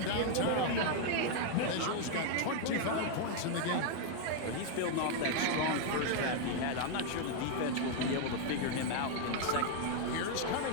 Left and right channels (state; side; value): different; both; correlation 0.00